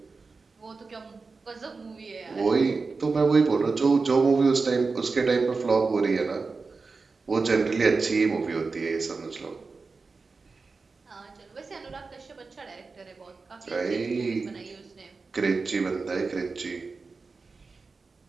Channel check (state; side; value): quieter; left; 4.3 dB